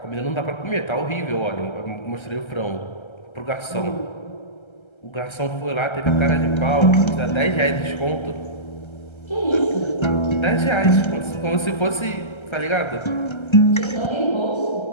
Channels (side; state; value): right; late; 1.3 ms